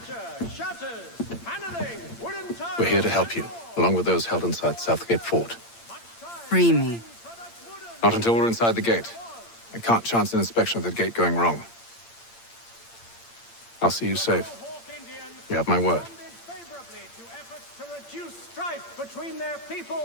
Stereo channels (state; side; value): late; right; 8.7 ms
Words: shutters, paneling, wooden tiles. We're here to help you, along with those held inside Southgate Fort. Free me. Not until we're inside the gate. I can't chance an inspection of the gate going wrong. I'll see you safe. You have my word. Favorably to efforts to reduce strife between their